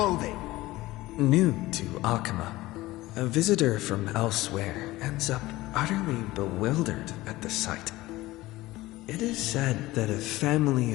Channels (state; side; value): quieter; right; 18.3 dB